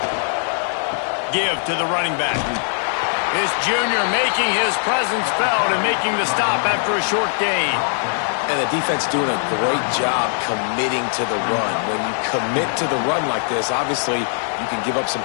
Give to the running back. This junior making his presence felt and making the stop after a short gain. And the defense doing a great job committing to the run. When you commit to the run like this, obviously you can give up some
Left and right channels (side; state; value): right; silent; 60 dB below the other